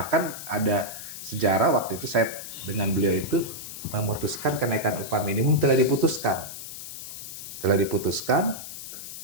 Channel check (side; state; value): left; noise; hiss, 10 dB below the sound